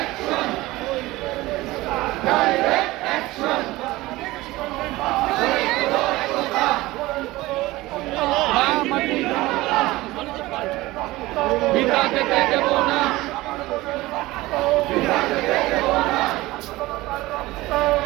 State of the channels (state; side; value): quieter; left; 19.0 dB